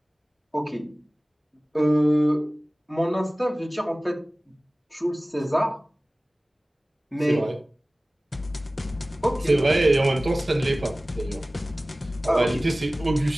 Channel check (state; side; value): normal; both; correlation 0.98